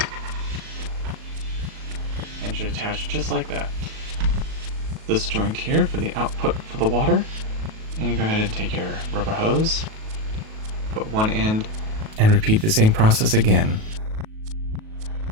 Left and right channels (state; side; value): late; left; 37 ms